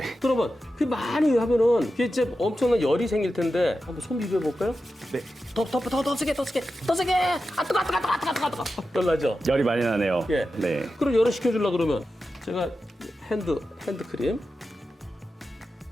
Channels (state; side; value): normal; both; correlation 0.91